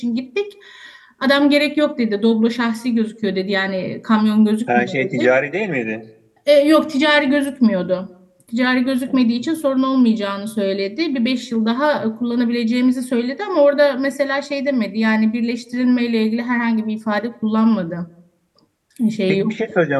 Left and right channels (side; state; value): both; identical; correlation 1.00